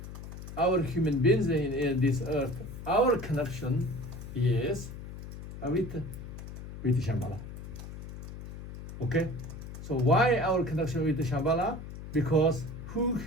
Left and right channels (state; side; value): noise; left; hum, 11 dB below the sound